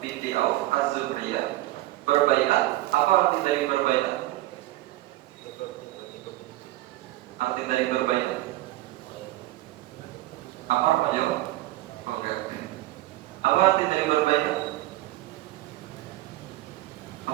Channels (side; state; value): left; quieter; 17.1 dB